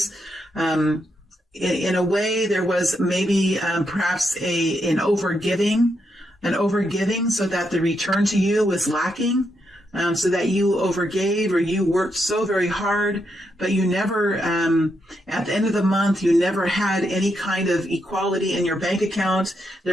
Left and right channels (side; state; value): both; normal; correlation 0.81